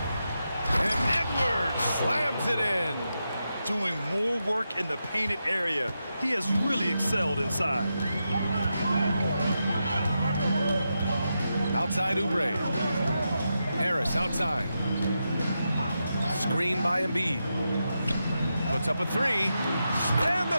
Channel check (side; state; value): both; inverted; correlation -0.87